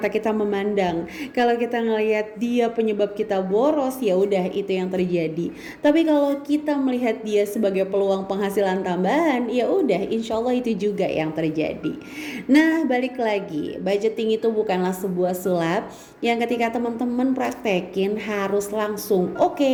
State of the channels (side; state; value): both; identical; correlation 1.00